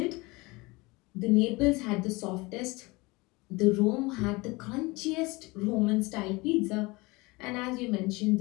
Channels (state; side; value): quieter; right; 23.9 dB